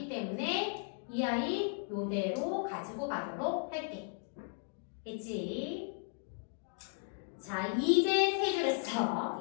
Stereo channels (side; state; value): right; silent; 54 dB below the other